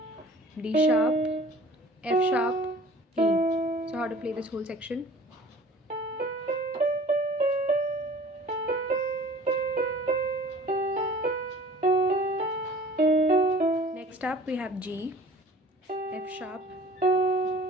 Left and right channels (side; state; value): both; normal; correlation 0.47